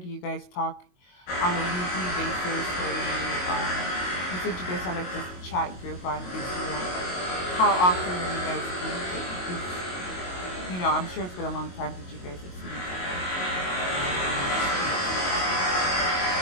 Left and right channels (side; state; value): right; late; 22 ms